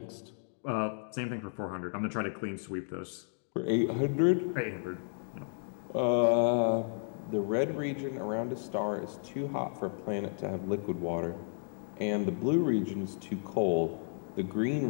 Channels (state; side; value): silent; right; digital silence